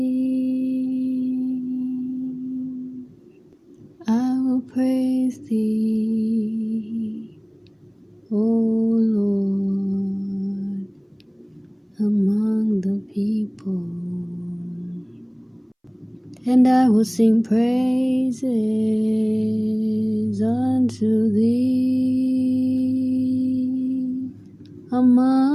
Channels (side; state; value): both; identical; correlation 1.00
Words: I will praise thee, O Lord, among the people. And I will sing praises unto thee